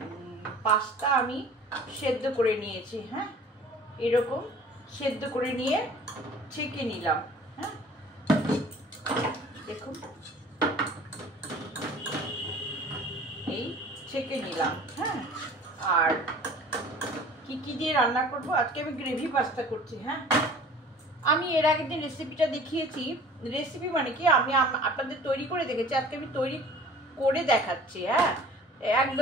পাস্তা আমি সেদ্ধ করে নিয়েছি। হ্যাঁ, এরকম সেদ্ধ করে নিয়ে ছেঁকে নিলাম। হ্যাঁ, দেখুন এই ছেঁকে নিলাম। হ্যাঁ, আর কি দিয়ে রান্না করব, আজকে আমি গ্রেভি পাস্তা করছি। হ্যাঁ, আমি এর আগের দিন রেসিপিটা দেখিয়েছি। রেসিপি মানে কি, আমি আপনাদের তৈরি করে দেখেছি, আজকে আমি তৈরি করে দেখাচ্ছি। হ্যাঁ,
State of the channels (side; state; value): both; normal; correlation 0.46